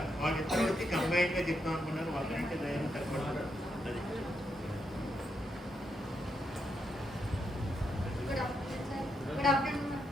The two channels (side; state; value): both; normal; correlation 0.81